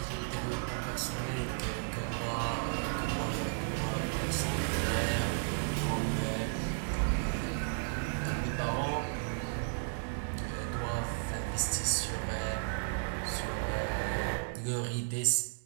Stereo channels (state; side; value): silent; left; digital silence